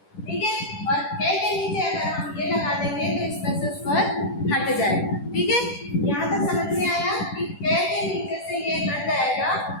ठीक है, और कै के नीचे अगर हम ये लगा देंगे तो इसमें से स्वर हट जाएगा। ठीक है, यहाँ तक समझ में आया कि कै के नीचे से ये हट जाएगा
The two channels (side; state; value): right; late; 10 ms